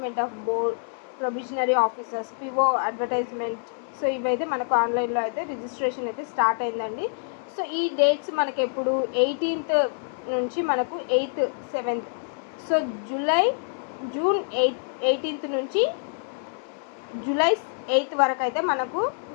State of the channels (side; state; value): right; silent; 61 dB below the other